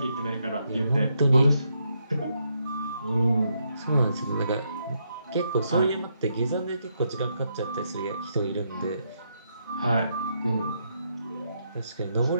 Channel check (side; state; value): both; inverted; correlation -0.78